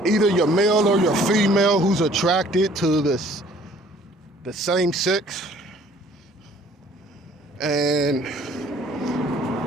either your male or your female who's attracted to the same sex. And,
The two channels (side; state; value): both; normal; correlation 0.57